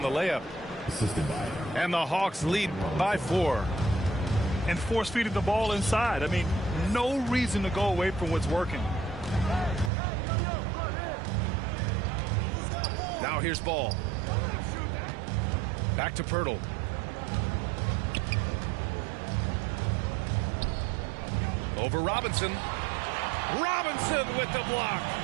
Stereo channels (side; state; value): left; drops out; at 9.9 s